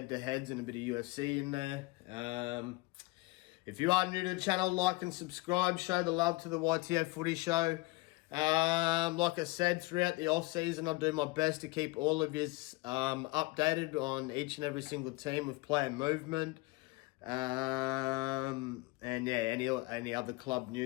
and a bit of UFC in there. If you are new to the channel, like and subscribe. Show the love to the YTF Footy Show. Like I said, throughout the off-season, I'll do my best to keep all of you updated on each and every single team with player movement. And yeah, any other club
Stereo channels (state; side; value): quieter; right; 22.8 dB